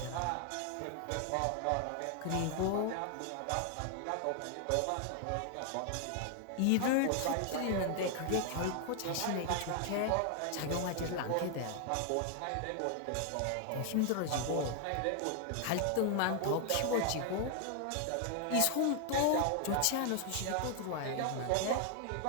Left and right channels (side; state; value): both; different; correlation 0.00